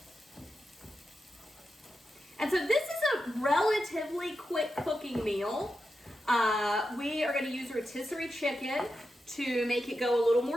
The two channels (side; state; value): both; normal; correlation 0.89